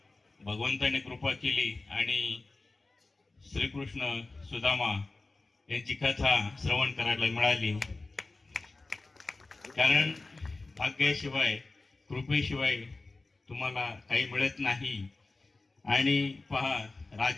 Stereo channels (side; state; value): right; quieter; 3.4 dB